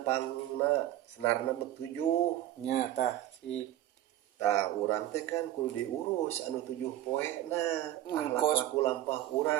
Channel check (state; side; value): quieter; left; 13.3 dB